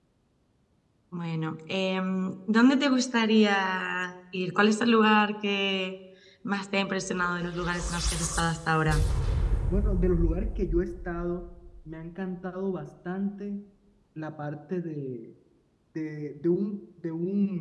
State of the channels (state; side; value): identical; both; correlation 1.00